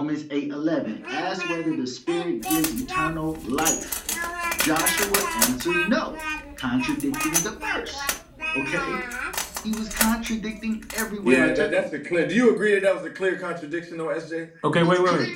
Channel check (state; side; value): identical; both; correlation 1.00